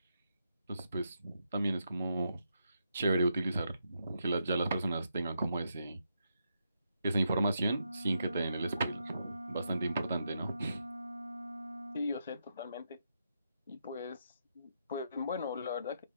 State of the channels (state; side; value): inverted; both; correlation -0.82